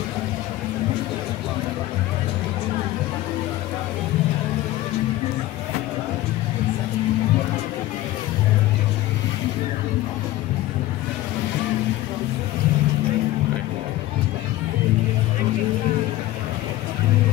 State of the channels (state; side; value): quieter; right; 16.1 dB